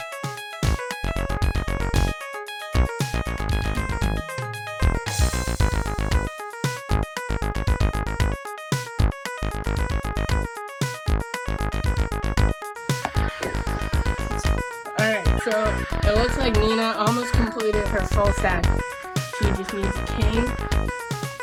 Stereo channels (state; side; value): identical; both; correlation 1.00